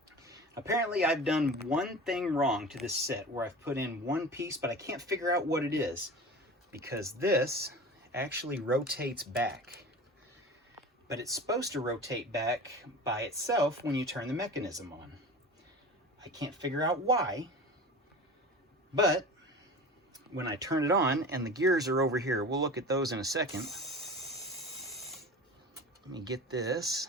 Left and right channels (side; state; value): both; normal; correlation 0.35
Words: Apparently I've done one thing wrong to this set where I've put in one piece, but I can't figure out what it is, because this actually rotates back. But it's supposed to rotate back by itself when you turn the mechanism on. I can't figure out why, but when I turn it on, and the gears are over here, we'll look at those in a second. Let me get this.